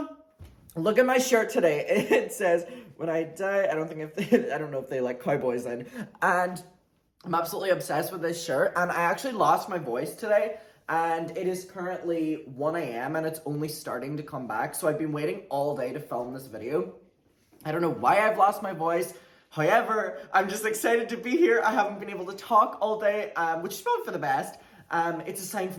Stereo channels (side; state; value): both; identical; correlation 1.00